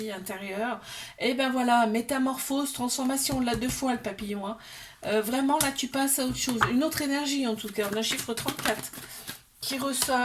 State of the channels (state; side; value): identical; both; correlation 1.00